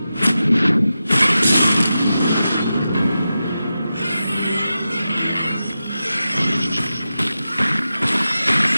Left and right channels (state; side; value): inverted; both; correlation -0.92